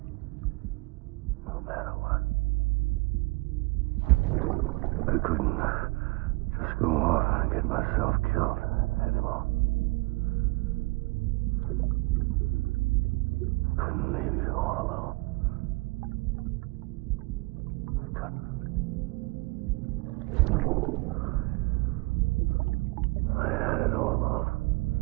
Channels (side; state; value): left; quieter; 26.0 dB